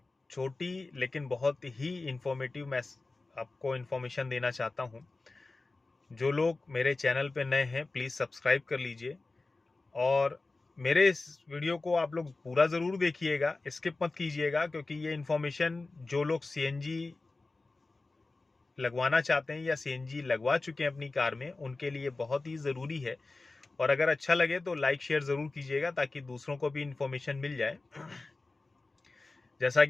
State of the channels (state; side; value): quieter; right; 3.4 dB